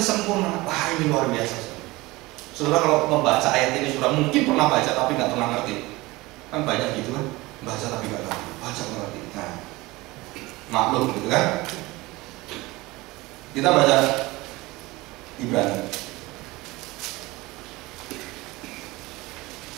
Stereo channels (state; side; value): quieter; left; 21.1 dB